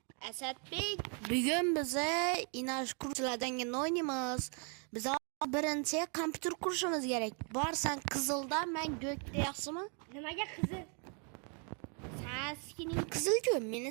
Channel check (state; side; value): quieter; left; 38.7 dB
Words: Asadbek, bugun biza Inash Xurutchilar jangini o'ynaymiz. Biz birinchi kompyuter qurishimiz kerak. Borsan qizilda, men go'kda, yaxshimi? Nimaga qizil? Sen skining qizil-ku, meni